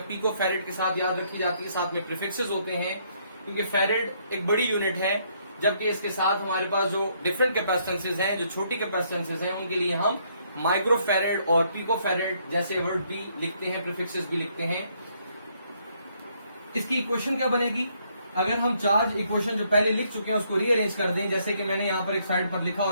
पिको फैरेड के साथ याद रखी जाती है, साथ में प्रीफिक्सेस होते हैं, क्योंकि फैरेड एक बड़ी यूनिट है, जबकि इसके साथ हमारे पास जो डिफरेंट कैपेसिटेंसेज हैं, जो छोटी कैपेसिटेंसेज हैं, उनके लिए हम माइक्रो फैरेड और पिको फैरेड जैसे वर्ड भी लिखते हैं, प्रीफिक्सेस भी लिखते हैं। इसकी इक्वेशन क्या बनेगी? अगर हम चार्ज इक्वेशन जो पहले लिख चुके हैं उसको रीअरेंज कर दें, जैसे कि मैंने यहां पर एक साइड पर लिखा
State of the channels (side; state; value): both; inverted; correlation -0.70